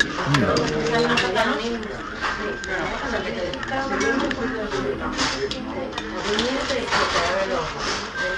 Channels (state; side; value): identical; both; correlation 1.00